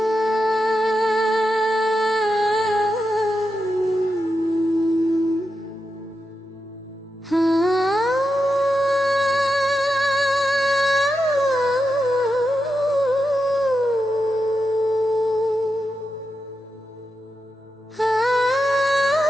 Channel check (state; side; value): normal; both; correlation 0.87